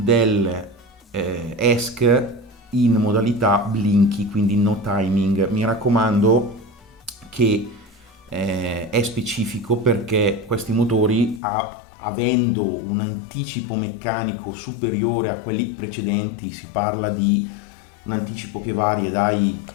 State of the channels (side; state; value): right; drops out; at 11.4 s